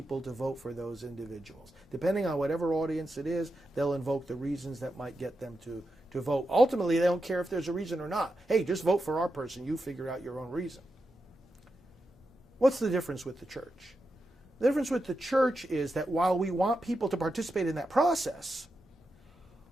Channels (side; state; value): both; normal; correlation 0.88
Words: to vote for those individuals. Depending on whatever audience it is, they'll invoke the reasons that might get them to vote. Ultimately, they don't care if there's a reason or not. Hey, just vote for our person. You figure out your own reason. What's the difference with the church? The difference with the church is that while we want people to participate in that process,